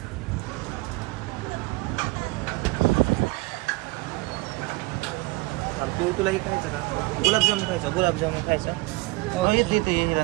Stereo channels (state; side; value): quieter; left; 23.5 dB